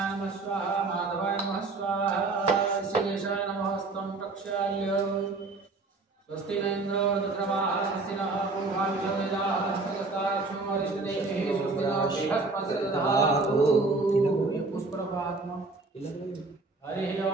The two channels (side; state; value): left; quieter; 3.6 dB